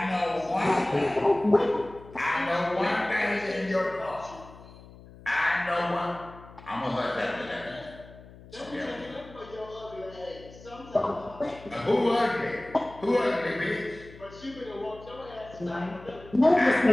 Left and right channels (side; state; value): left; noise; hum, 20 dB below the sound